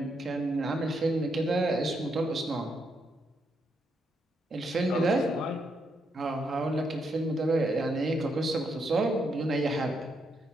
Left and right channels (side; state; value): both; normal; correlation 0.79